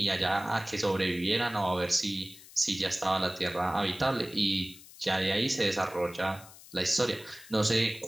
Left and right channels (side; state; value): left; noise; hiss, 20 dB below the sound